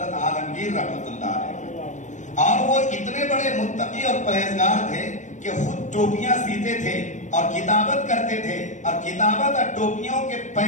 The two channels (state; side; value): late; right; 0.35 ms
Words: عالمگیر رحمت اللہ علیہ. اور وہ اتنے بڑے متقی اور پرہیزگار تھے کہ خود ٹوپیاں سیتے تھے اور کتابت کرتے تھے، اور کتابت اور ٹوپیوں کے